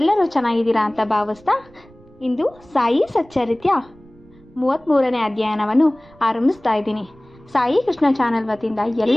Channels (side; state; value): right; noise; rumble, 26 dB below the sound